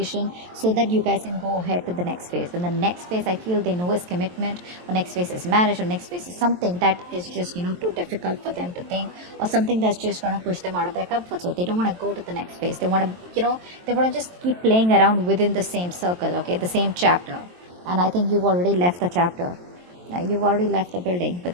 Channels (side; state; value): left; late; 23 ms